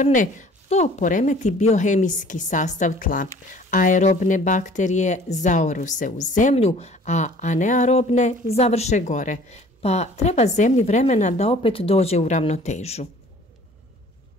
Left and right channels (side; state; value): both; normal; correlation 0.51